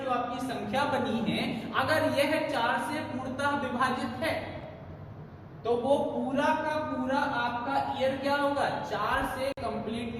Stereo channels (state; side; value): identical; both; correlation 1.00